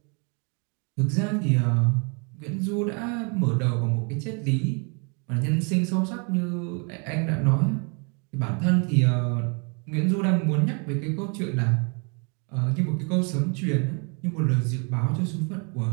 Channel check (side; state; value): left; quieter; 35.7 dB